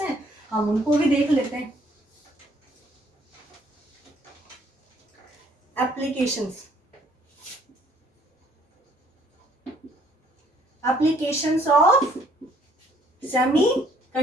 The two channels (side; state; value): both; normal; correlation 0.62